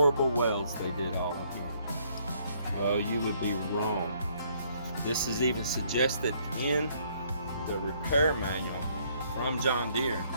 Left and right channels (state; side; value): inverted; both; correlation -0.67